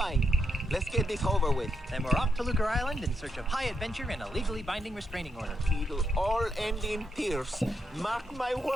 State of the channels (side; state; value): both; normal; correlation 0.81